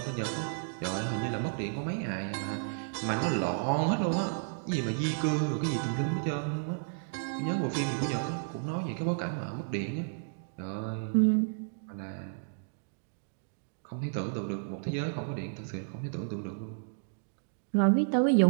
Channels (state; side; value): silent; left; digital silence